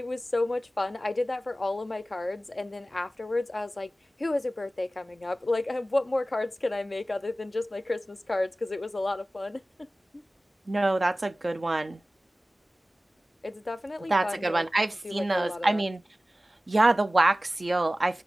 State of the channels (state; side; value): normal; both; correlation 0.96